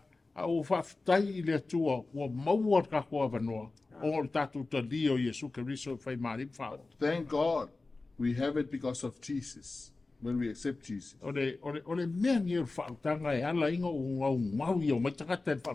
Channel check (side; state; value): right; quieter; 3.5 dB